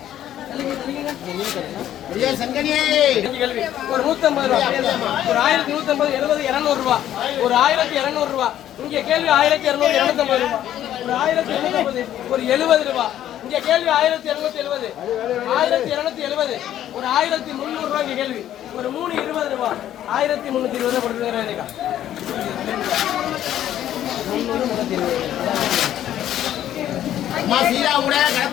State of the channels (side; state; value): right; quieter; 11.7 dB